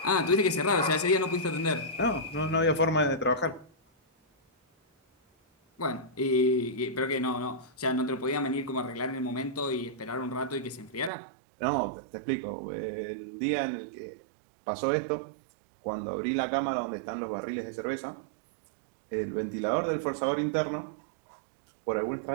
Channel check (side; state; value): left; drops out; at 11.1 s